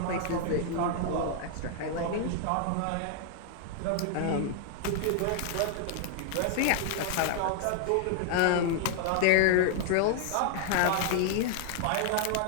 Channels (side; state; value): both; different; correlation 0.00